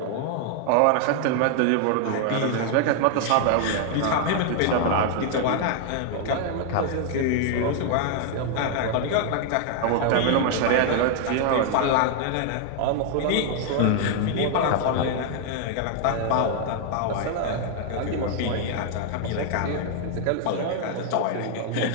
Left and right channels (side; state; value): both; different; correlation 0.00